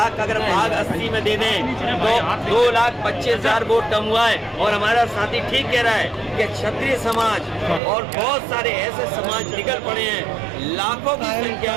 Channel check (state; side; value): drops out; left; at 7.8 s